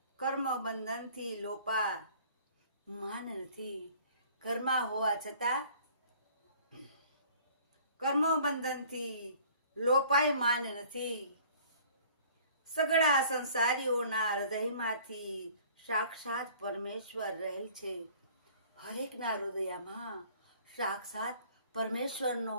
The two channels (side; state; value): both; inverted; correlation -0.52